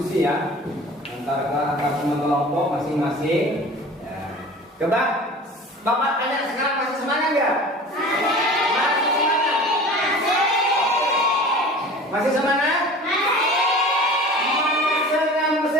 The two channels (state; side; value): normal; both; correlation 0.40